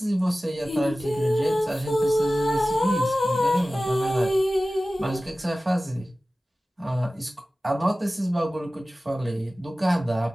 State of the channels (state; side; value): normal; both; correlation 0.96